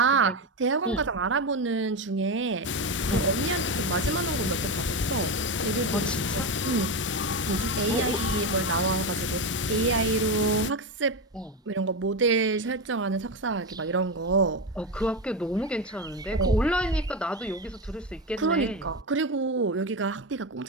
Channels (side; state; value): both; normal; correlation 0.15